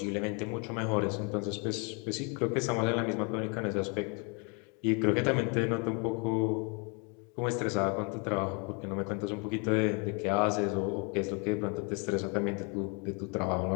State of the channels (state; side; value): quieter; right; 34.6 dB